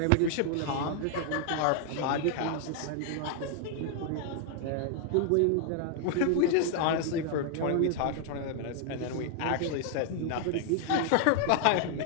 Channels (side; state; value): both; different; correlation 0.00